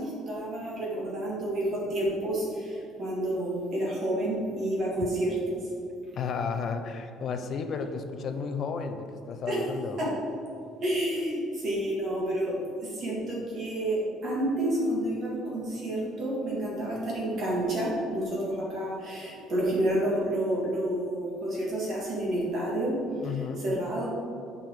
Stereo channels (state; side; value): normal; both; correlation 0.62